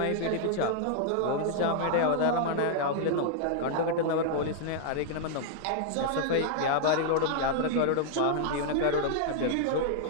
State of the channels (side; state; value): both; different; correlation -0.01